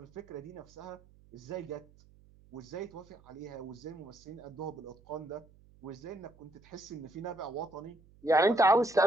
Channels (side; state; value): right; noise; hum, 26 dB below the sound